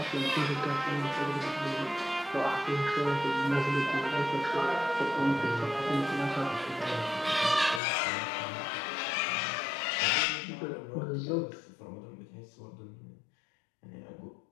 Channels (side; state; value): right; drops out; at 7.8 s